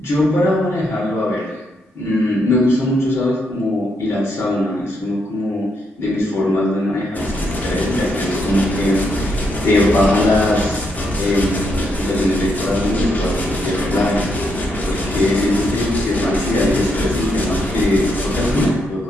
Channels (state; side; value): normal; both; correlation 0.78